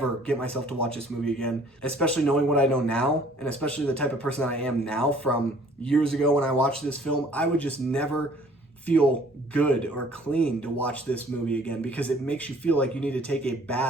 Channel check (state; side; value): normal; both; correlation 0.56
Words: get myself to watch this movie again, especially knowing what I know now, and especially the type of person that I am now from years ago when I watched this film. I would just never feel good or clean to watch this movie again, because it makes you feel like you need to take a